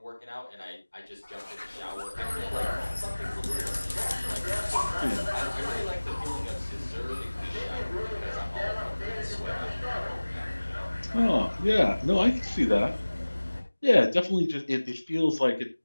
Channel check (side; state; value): both; inverted; correlation -1.00